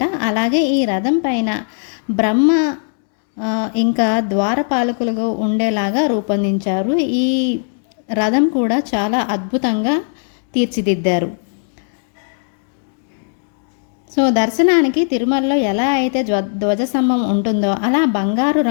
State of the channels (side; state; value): right; silent; digital silence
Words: అలాగే ఈ రథం పైన బ్రహ్మ ఇంకా ద్వారపాలకులుగా ఉండేలాగా రూపొందించారు. ఈ రథం కూడా చాలా అద్భుతంగా తీర్చిదిద్దారు. సో దర్శనానికి తిరుమలలో ఎలా అయితే ధ్వజస్తంభం ఉంటుందో అలా బంగారు